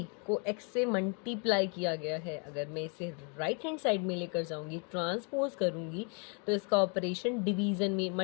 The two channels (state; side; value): quieter; right; 36.8 dB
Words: को x से मल्टीप्लाई किया गया है। अगर मैं इसे राइट हैंड साइड में लेकर जाऊंगी, ट्रांसपोज करूंगी, तो इसका ऑपरेशन डिवीज़न में,